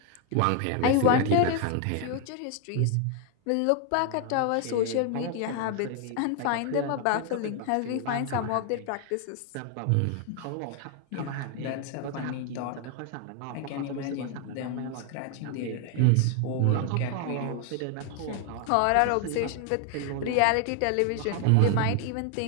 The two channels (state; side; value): different; both; correlation 0.00